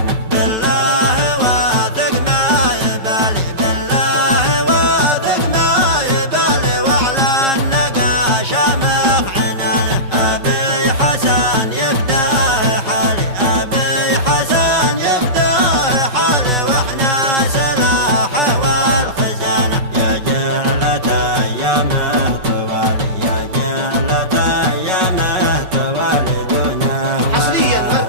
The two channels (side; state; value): left; late; 5.4 ms